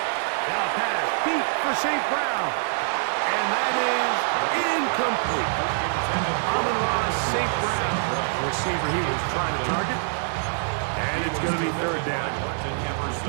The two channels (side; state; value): left; silent; digital silence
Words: Now pass deep for St. Brown. And that is incomplete. Amon-Ra St. Brown, the receiver he was trying to target. And it's going to be 3rd down. Martin